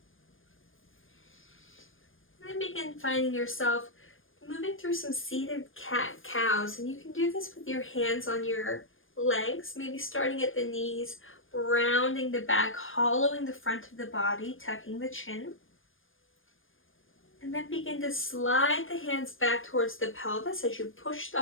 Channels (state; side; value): late; right; 0.59 ms